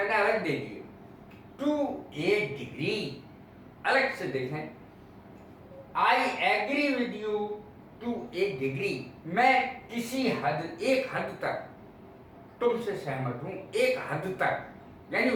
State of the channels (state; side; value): identical; both; correlation 1.00